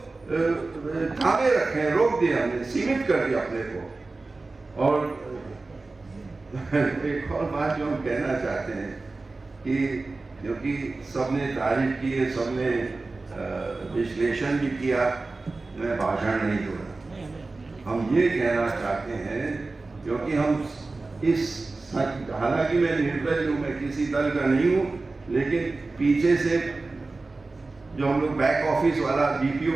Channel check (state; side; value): quieter; left; 3.5 dB